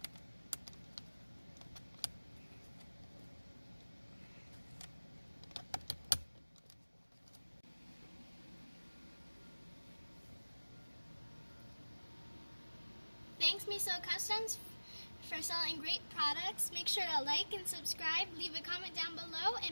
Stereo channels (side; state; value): both; inverted; correlation -1.00